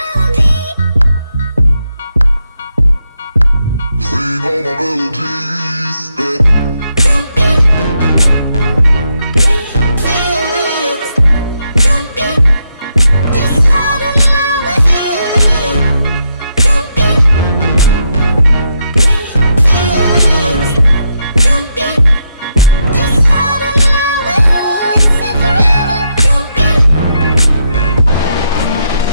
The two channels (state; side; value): inverted; both; correlation -0.80